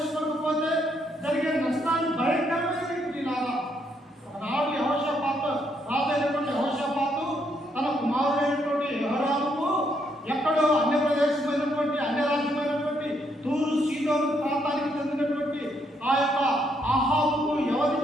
జరిగే నష్టాన్ని భయంకరమైనటువంటి లాగా. ఒకనాడు యెహోషాపాతు, రాజైనటువంటి యెహోషాపాతు తన కుమారుడైనటువంటి యెహోరాముకు ఎక్కడో అన్య ప్రదేశమైనటువంటి అన్య రాజ్యమైనటువంటి తూరు సీదోను ప్రాంతానికి చెందినటువంటి ఆ యొక్క ఆహాబుకు ఎవరు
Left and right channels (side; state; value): both; normal; correlation 0.74